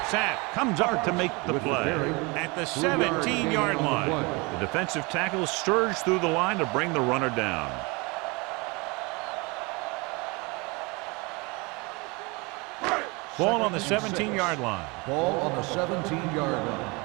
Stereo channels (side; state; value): left; quieter; 27.1 dB